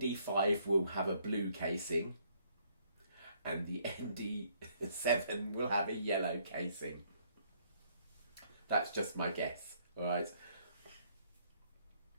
will have a blue casing and the ND7 will have a yellow casing. That's just my guess, all right?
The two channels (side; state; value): both; inverted; correlation -0.67